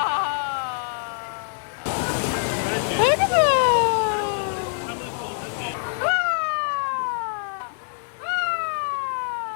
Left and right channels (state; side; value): silent; right; digital silence